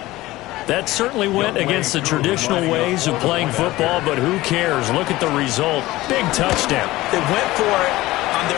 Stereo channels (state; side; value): quieter; right; 18.1 dB